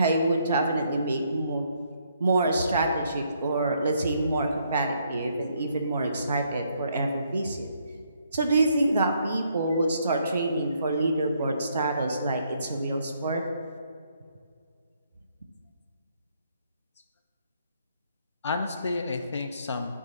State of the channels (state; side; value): inverted; both; correlation -0.71